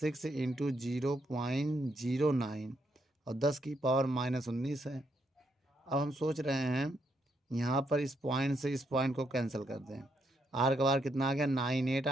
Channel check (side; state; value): both; normal; correlation 0.77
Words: × 0.09 और 10⁻19 है। अब हम सोच रहे हैं यहाँ पर इस पॉइंट से इस पॉइंट को कैंसिल कर दें। R का बार कितना आ गया? 98